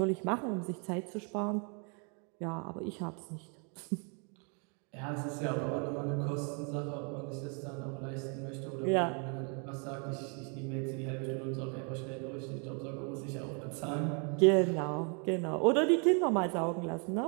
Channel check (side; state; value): left; quieter; 37.3 dB